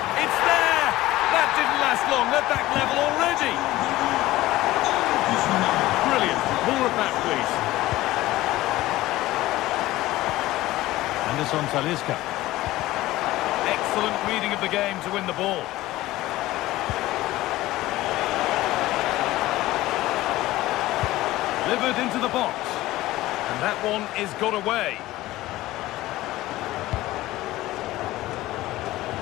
It's there! That didn't last long. They're back level already. Brilliant. More of that, please. Anderson Talisca. Excellent reading of the game to win the ball. Delivered into the box. And that one is got away.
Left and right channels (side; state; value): right; quieter; 17.0 dB